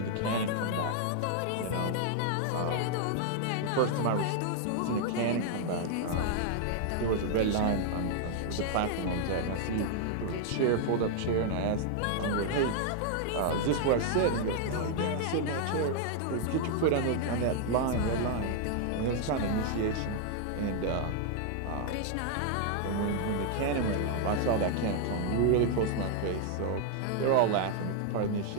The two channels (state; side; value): different; both; correlation 0.00